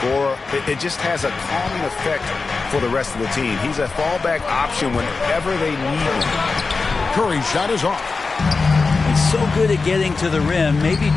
it just has a calming effect for the rest of the team. He's a fallback option whenever they need him. Curry's shot is off. He's so good at getting to the rim. Maybe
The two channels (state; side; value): quieter; right; 4.2 dB